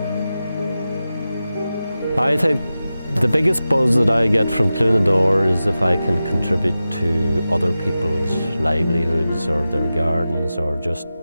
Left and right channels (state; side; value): inverted; both; correlation -0.93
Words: I think the biggest buzz that I get from Cluain is if I can contribute to other people's livelihoods or their gardens, or just